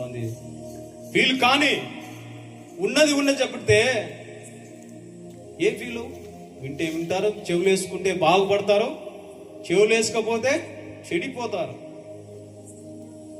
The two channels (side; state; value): both; identical; correlation 1.00